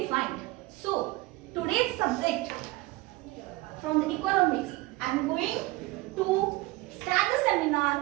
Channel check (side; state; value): left; quieter; 20.3 dB